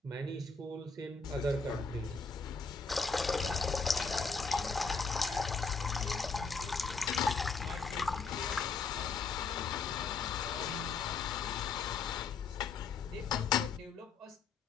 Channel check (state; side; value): quieter; right; 4.7 dB